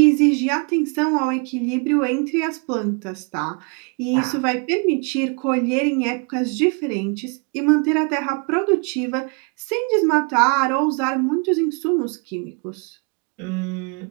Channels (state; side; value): quieter; left; 35.6 dB